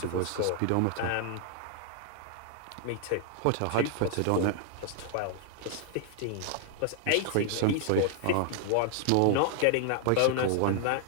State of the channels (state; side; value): different; both; correlation 0.00